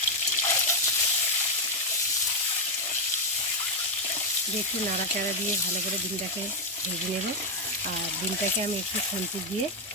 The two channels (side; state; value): both; normal; correlation 0.04